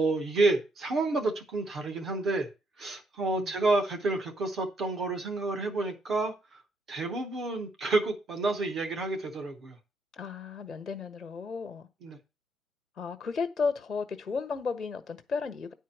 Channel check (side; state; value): both; normal; correlation 0.74